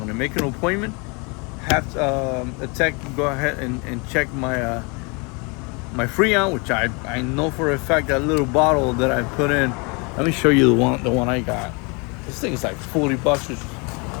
make an appointment, have a tech go ahead and check my my Freon, which I know for a fact that little bottle that I put in. Let me show you the one I got. This thing is like $40.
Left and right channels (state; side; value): quieter; right; 31.2 dB